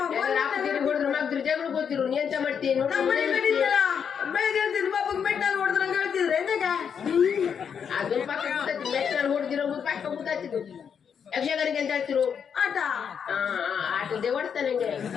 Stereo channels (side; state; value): right; quieter; 7.3 dB